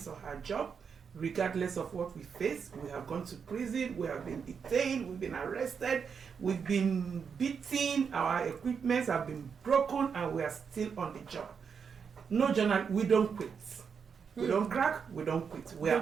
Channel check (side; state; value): left; quieter; 6.4 dB